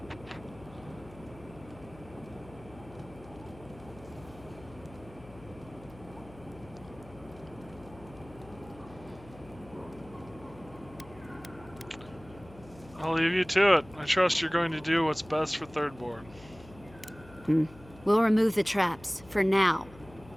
I'll leave you to it. I trust you're going to do what's best for Thirdborn. We'll remove the traps, for now.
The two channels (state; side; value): noise; left; hum, 20 dB below the sound